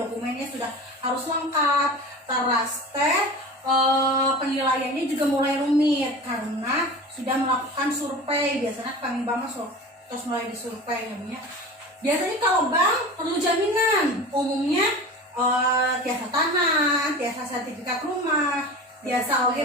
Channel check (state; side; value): normal; both; correlation 0.34